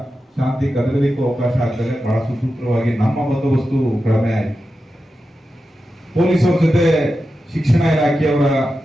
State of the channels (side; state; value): both; normal; correlation 0.91